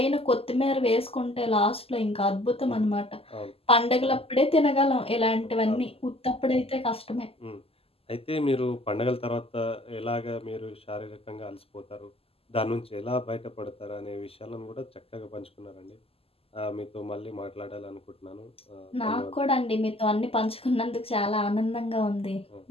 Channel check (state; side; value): late; right; 0.28 ms